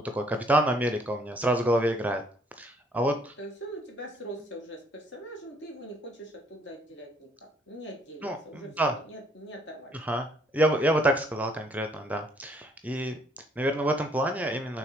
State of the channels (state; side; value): normal; both; correlation 0.64